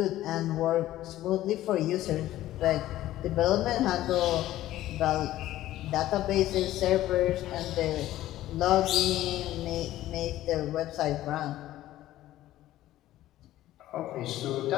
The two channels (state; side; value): quieter; right; 14.5 dB